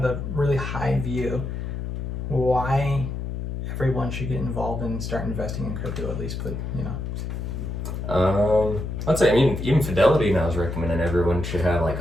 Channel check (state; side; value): noise; left; hum, 5 dB below the sound